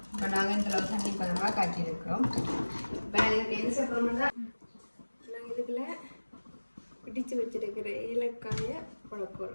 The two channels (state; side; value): inverted; both; correlation -1.00